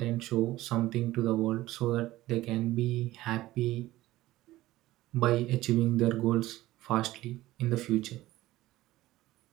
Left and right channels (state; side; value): quieter; left; 16.6 dB